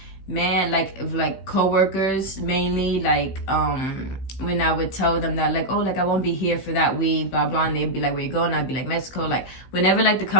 man, like coworkers mainly, like when I would tell them that like, oh, like I won't be here for that week, blah blah, and they'd be like, where you going? I'd be like, Mexico. Like whenever like the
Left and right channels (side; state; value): right; late; 16 ms